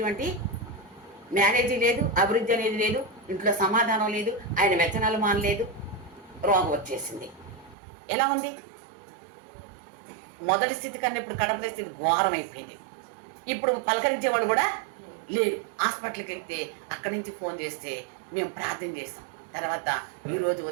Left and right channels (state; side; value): drops out; left; at 7.8 s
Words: మ్యారేజీ లేదు, అభివృద్ధి అనేది లేదు, ఇంట్లో సమాధానం లేదు, ఆయన వ్యచనాలు మానలేదు, రోగం వచ్చేసింది. ఎలా ఉంది? మొదటి స్థితి కన్నా ఇప్పుడు కడపల స్థితి ఘోరం అయిపోయింది. ఇప్పుడు పలకరించేవాడు కూడా లేరు. హాస్పిటల్కి వెళ్తే అక్కడి నుంచి ఫోన్ చేస్తే మేము ప్రార్థన చేస్తాం. తర్వాత ఈరోజు